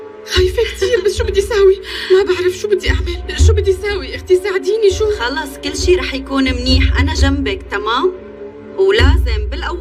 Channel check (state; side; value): identical; both; correlation 1.00